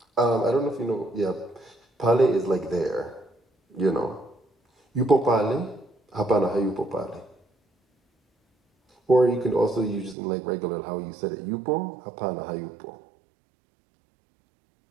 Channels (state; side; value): drops out; left; at 10.2 s